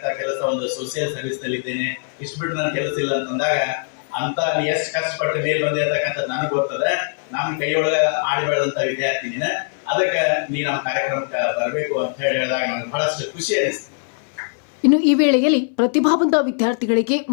ಕೆಲಸ ಒಂದು ಸೋಷಿಯಲ್ ಸರ್ವಿಸ್ ನಲ್ಲಿ ಇದ್ದೇನೆ, ಇಷ್ಟು ಬಿಟ್ಟು ನನ್ನ ಕೆಲಸ ಇಲ್ಲ ಅಂತಂದಾಗ, ಅಂತ ಎಷ್ಟು ಕಷ್ಟಪಟ್ಟು ಮೇಲೆ ಬಂದಿರತಕ್ಕಂಥದ್ದು ನನಗೆ ಗೊತ್ತದೆ, ನಮ್ಮ ಕೈಯೊಳಗೆ ಆಡಿ ಬೆಳೆದಂತ ವಿದ್ಯಾರ್ಥಿನಿನ, ಅದಕ್ಕೆ ನೀ ನಮ್ಮ ಕಾರ್ಯಕ್ರಮಕ್ಕೆ ಬರಬೇಕು ಅಂತ ಹೇಳಿದಾಗ ನಮ್ಗೆ ಬಹಳಷ್ಟು ಖುಷಿ ಅನಿಸ್ತು. ಇನ್ನು ಈ ವೇಳೆಯಲ್ಲಿ ಪ್ರತಿಭಾವಂತ ವಿದ್ಯಾರ್ಥಿಗಳಿಗೆ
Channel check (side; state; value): right; silent; 59 dB below the other